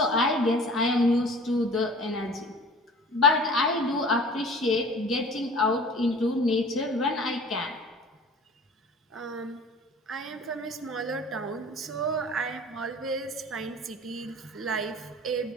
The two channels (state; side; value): normal; both; correlation 0.44